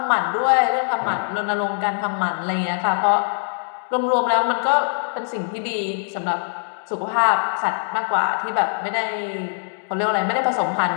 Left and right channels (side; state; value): right; silent; digital silence